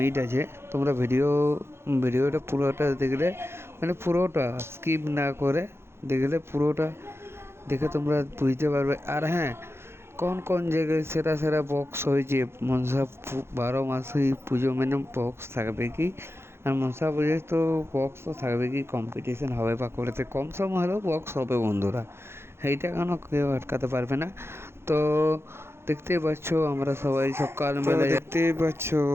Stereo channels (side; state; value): left; late; 0.12 ms